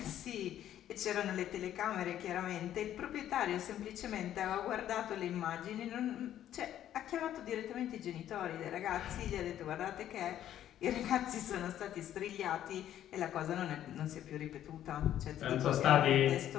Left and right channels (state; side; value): quieter; right; 11.5 dB